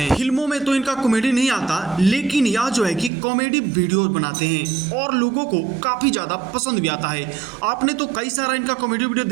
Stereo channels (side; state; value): left; drops out; at 3.1 s